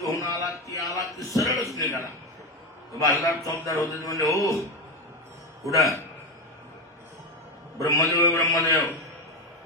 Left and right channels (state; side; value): normal; both; correlation 0.13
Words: आला की सरळच निघाला. बालदार चौकदार होते म्हणजे हो कुठं ब्रह्मदेव, ब्रह्मदेव